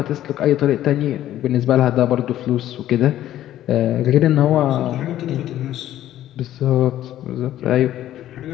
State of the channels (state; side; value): quieter; right; 12.8 dB